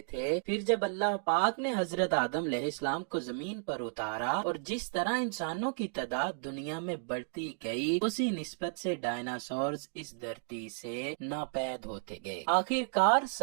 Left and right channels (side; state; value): left; silent; digital silence